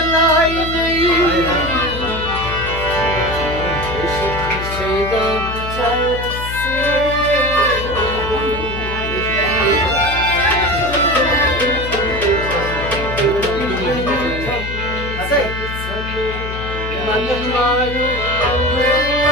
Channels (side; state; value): left; noise; hum, 7 dB below the sound